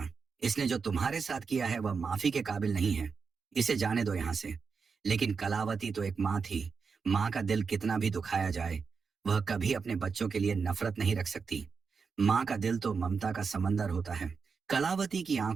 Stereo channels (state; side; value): quieter; left; 5.4 dB